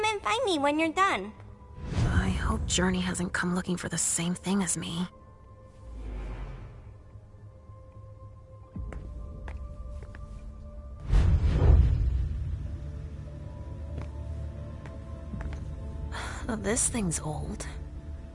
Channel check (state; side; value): identical; both; correlation 1.00